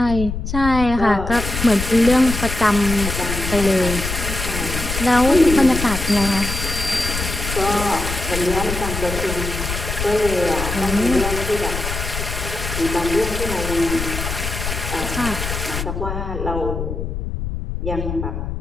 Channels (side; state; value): left; noise; rumble, 5 dB below the sound